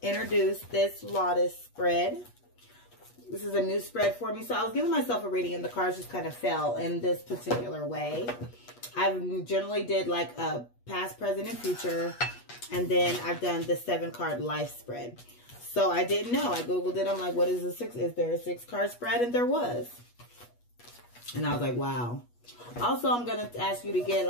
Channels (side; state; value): right; late; 8.3 ms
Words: introduce this lotus spread. This is a new spread for me. So I was giving myself a reading and the cards just kind of fell in this particular way. I generally did like a past, present, and future. And then I've done the 7-card life spread. So I didn't know. I Googled it. I'm like, what is a 6? Is there a 6-card spread? And there was. And I was like, wow. Also, I'm going to ask you to get